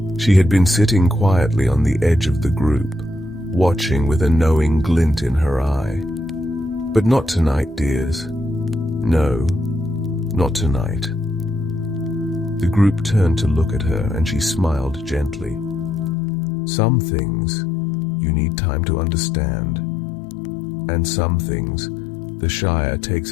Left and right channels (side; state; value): right; drops out; at 16.2 s